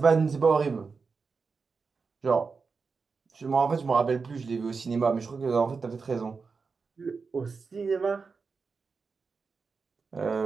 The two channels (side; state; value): left; quieter; 4.8 dB